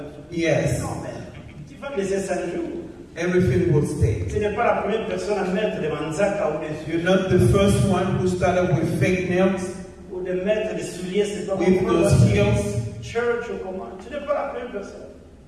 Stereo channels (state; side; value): identical; both; correlation 1.00